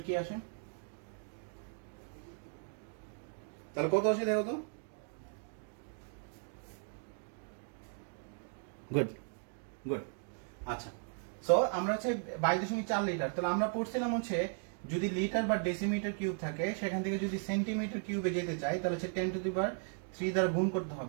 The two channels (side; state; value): left; silent; 53 dB below the other